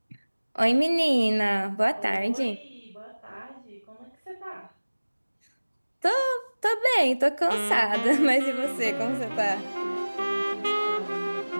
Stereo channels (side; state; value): both; inverted; correlation -1.00